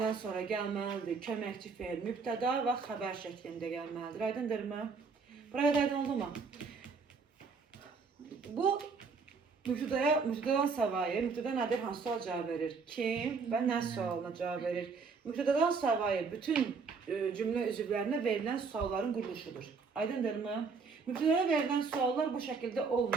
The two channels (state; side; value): quieter; left; 5.0 dB